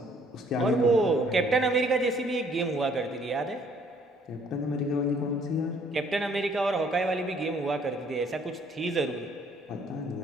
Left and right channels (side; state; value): both; normal; correlation 0.62